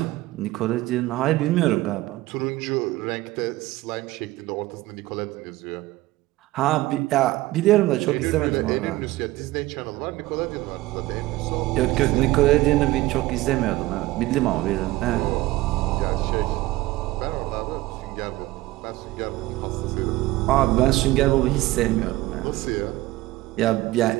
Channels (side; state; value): left; quieter; 18.0 dB